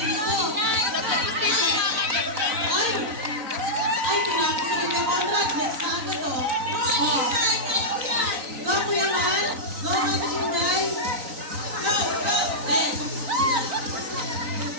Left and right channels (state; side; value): late; left; 4.0 ms